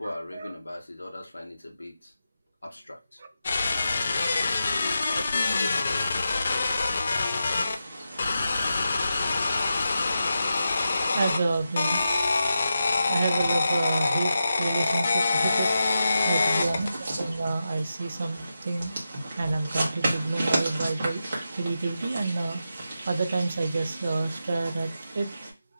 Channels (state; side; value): inverted; both; correlation -0.89